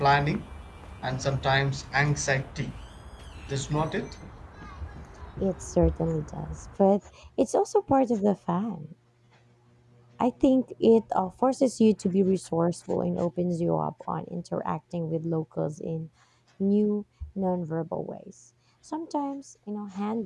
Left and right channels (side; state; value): both; identical; correlation 1.00